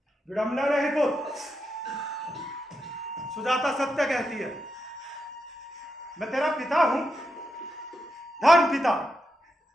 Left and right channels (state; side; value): normal; both; correlation 0.85